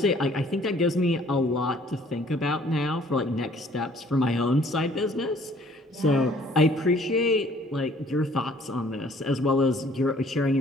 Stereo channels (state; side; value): normal; both; correlation 0.57